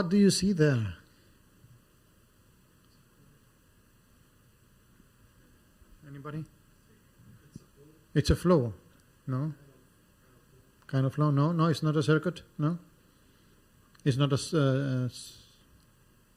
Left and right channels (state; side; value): identical; both; correlation 1.00